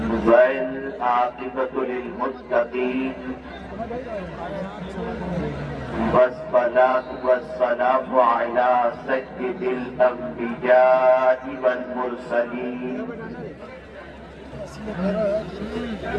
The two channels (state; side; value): identical; both; correlation 1.00